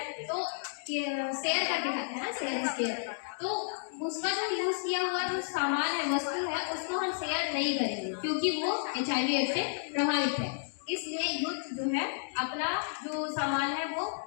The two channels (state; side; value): silent; right; digital silence